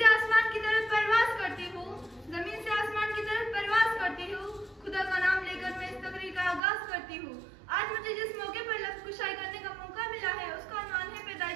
आसमान की तरफ परवाज करती हूँ, जमीन से आसमान की तरफ परवाज करती हूँ, खुदा का नाम लेकर मैं इस तकरीर का आगाज करती हूँ। आज मुझे जिस मौके पर लफ्ज़ कुशाई करने का मौका मिला है उसका उन्वान है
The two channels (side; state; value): left; drops out; at 6.6 s